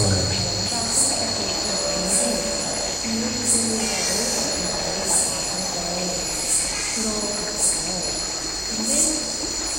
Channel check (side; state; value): both; identical; correlation 1.00